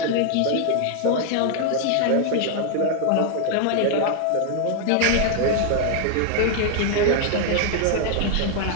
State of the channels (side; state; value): both; different; correlation 0.00